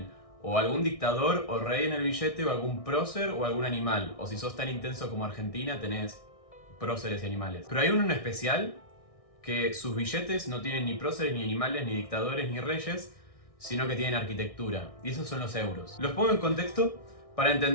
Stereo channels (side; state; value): right; late; 1.6 ms